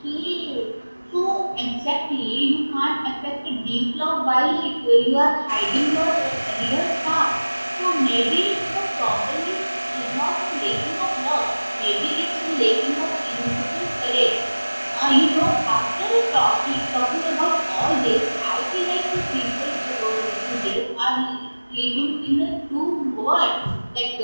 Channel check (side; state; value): both; inverted; correlation -1.00